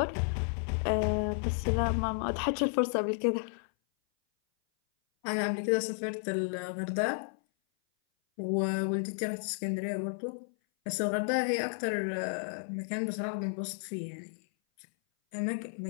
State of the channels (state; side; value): silent; right; 56 dB below the other